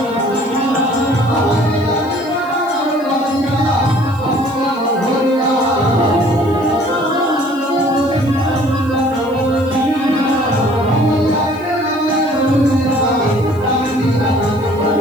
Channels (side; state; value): left; noise; hiss, 26 dB below the sound